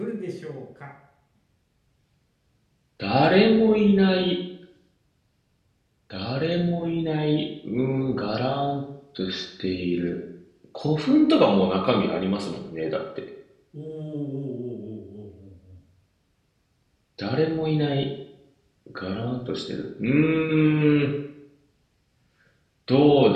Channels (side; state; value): both; identical; correlation 1.00